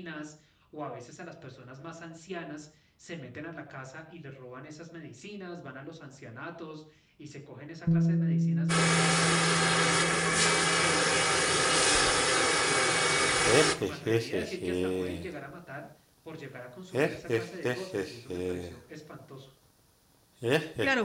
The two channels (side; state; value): both; identical; correlation 1.00